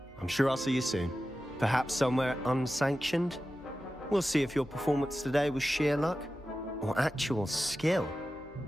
I'm sure I'll see you soon. Perhaps somewhere unsanctioned? We'll see if your performance today was sheer luck, or actual skill.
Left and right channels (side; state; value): both; normal; correlation 0.93